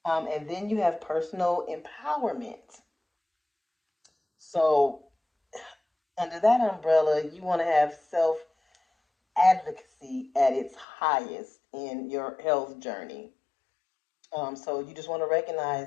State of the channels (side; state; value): right; drops out; at 10.9 s